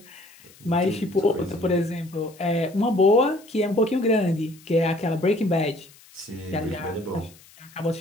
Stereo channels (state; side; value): noise; left; hiss, 25 dB below the sound